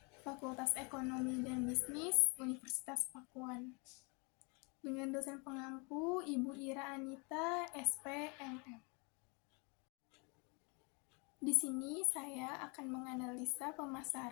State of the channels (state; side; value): quieter; right; 32.0 dB